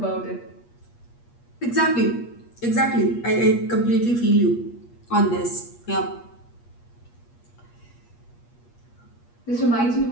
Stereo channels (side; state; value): right; late; 8.4 ms